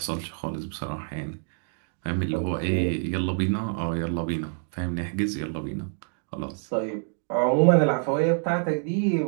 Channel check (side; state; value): left; silent; 60 dB below the other